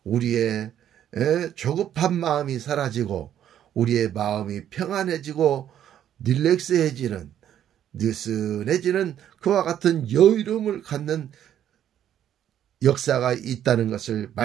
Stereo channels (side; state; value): left; quieter; 10.5 dB